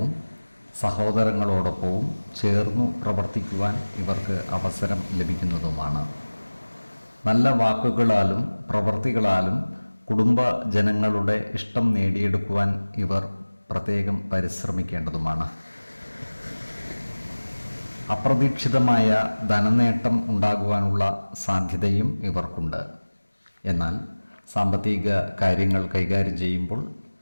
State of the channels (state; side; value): inverted; both; correlation -1.00